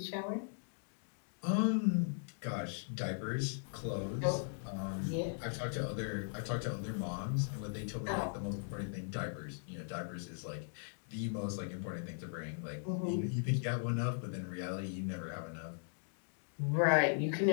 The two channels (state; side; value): silent; right; digital silence